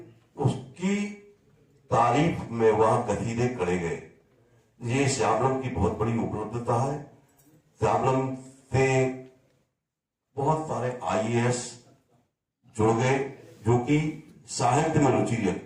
उसकी तारीफ में वहां कसीदे करे गए। ये श्यामलम की बहुत बड़ी उपलब्धता है। श्यामलम से बहुत सारे IAS जुड़ गए जो कि साहित्य में रुचि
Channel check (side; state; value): both; identical; correlation 1.00